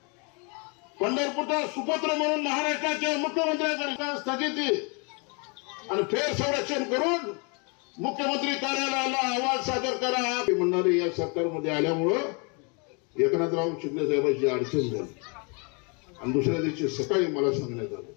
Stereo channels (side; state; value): right; quieter; 33.3 dB